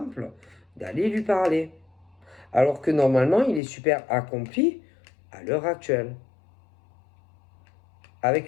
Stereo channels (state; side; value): drops out; right; at 3.6 s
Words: d'aller lui parler. Alors que normalement, il est super accompli à l'heure actuelle.